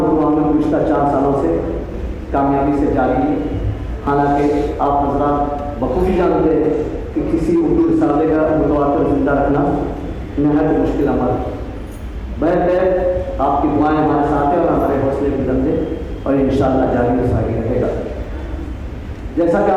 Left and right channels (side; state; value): both; identical; correlation 1.00